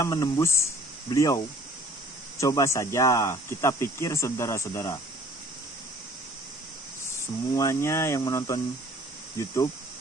menembus beliau. Coba saja kita pikir saudara-saudara. Semuanya yang menonton YouTube,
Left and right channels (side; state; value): both; normal; correlation 0.53